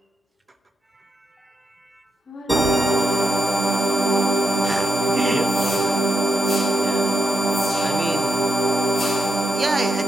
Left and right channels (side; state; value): both; normal; correlation 0.82